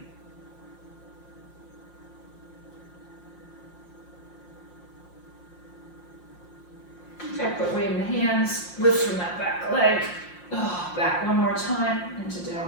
Okay, put weight in the hands, lift from that back leg. Oh, back one more time into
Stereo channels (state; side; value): late; right; 5.6 ms